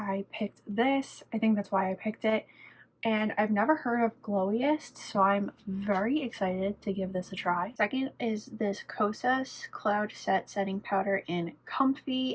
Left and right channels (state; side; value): identical; both; correlation 1.00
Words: picked this. I think that's why I picked it. And I've never heard of Glowiest, so I'm very excited to give this a try. Second is this Kosas Cloud Set Setting Powder in